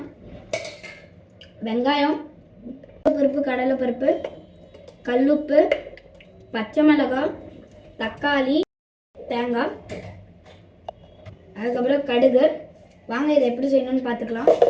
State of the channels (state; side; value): identical; both; correlation 1.00